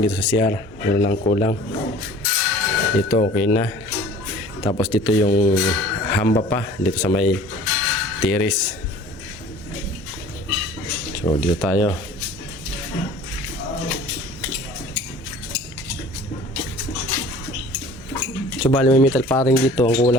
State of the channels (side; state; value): both; normal; correlation 0.46